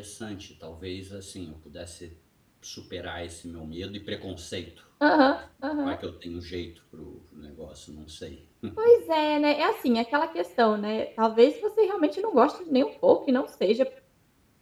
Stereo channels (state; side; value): identical; both; correlation 1.00